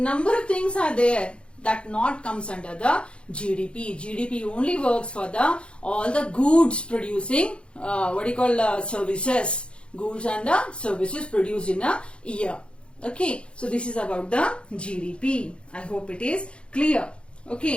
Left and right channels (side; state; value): right; late; 0.057 ms